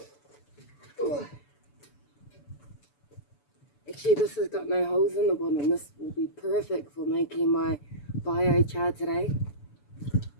Ooh. Actually, this has got no holes in the bottom. This will be perfect for making my biochar today.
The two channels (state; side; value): late; right; 6.9 ms